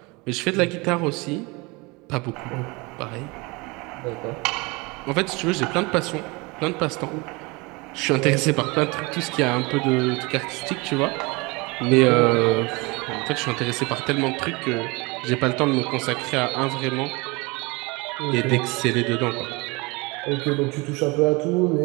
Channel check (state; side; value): quieter; left; 26.0 dB